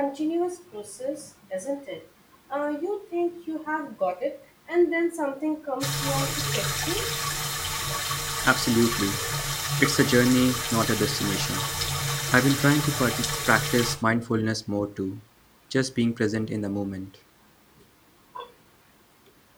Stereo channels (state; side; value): identical; both; correlation 1.00